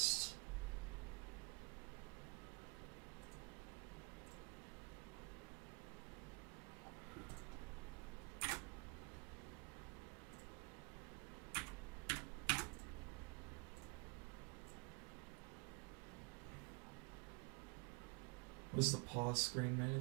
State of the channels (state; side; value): quieter; left; 30.6 dB